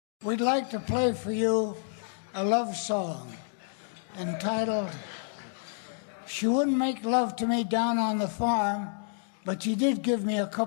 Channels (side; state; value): right; silent; digital silence